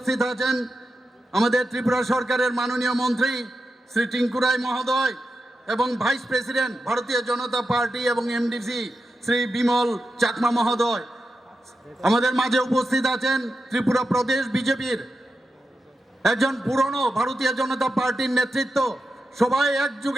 আছেন আমাদের ত্রিপুরা সরকারের মাননীয় মন্ত্রী শ্রী টিঙ্কু রায় মহোদয় এবং ভাইস প্রেসিডেন্ট ভারতীয় জনতা পার্টি এবং এমডিসি শ্রী বিমল চাকমা মহোদয়। আমাদের মাঝে উপস্থিত আছেন ত্রিপুরা প্রদেশ বিজেপির একজন পুরনো ভারতীয় জনতা পার্টির নেতৃত্ব, সবাই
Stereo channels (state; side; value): normal; both; correlation 0.89